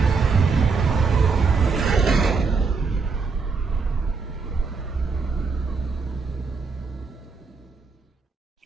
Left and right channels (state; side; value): quieter; left; 4.7 dB